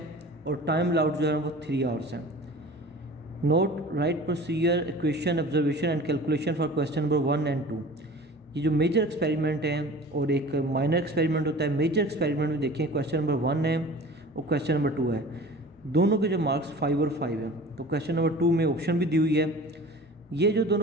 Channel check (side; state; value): both; normal; correlation 0.41